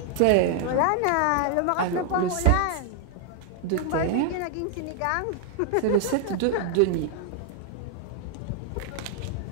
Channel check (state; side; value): different; both; correlation 0.00